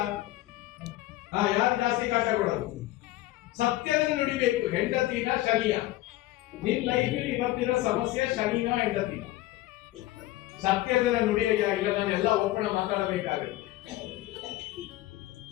ಯಾರು ಜಾಸ್ತಿ ಕಾಟ ಕೊಡೋದು? ಸತ್ಯದ ನುಡಿಬೇಕು. ಹೆಂಡತಿನ ಶನಿಯ? ನಿನ್ ಲೈಫಲ್ಲಿ ಇವತ್ತಿನ ಸಮಸ್ಯೆ ಶನಿನ ಹೆಂಡತಿನ? ಸತ್ಯದ ನುಡಿಯ ಇಲ್ಲ, ನಾನು ಎಲ್ಲ ಒಪ್ಪಣ ಮಾತಾಡಬೇಕಾಗುತ್ತೆ.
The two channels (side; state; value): right; quieter; 16.6 dB